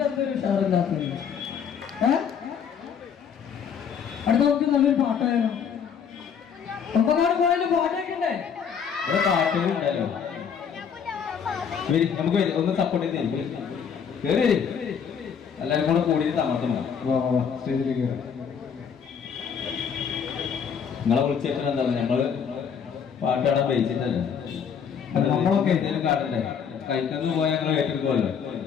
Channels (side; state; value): right; quieter; 7.2 dB